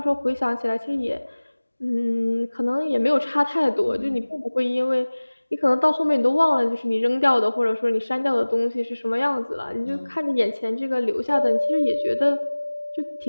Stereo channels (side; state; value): both; inverted; correlation -1.00